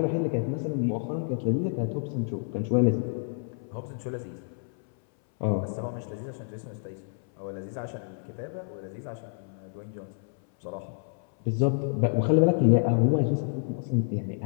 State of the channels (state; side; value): silent; right; 59 dB below the other